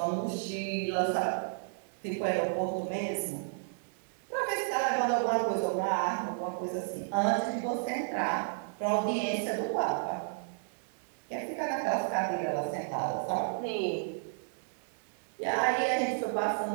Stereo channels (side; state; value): left; silent; digital silence